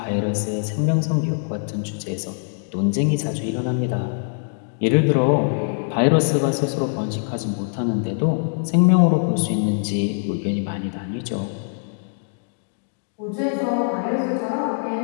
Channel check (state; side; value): silent; right; digital silence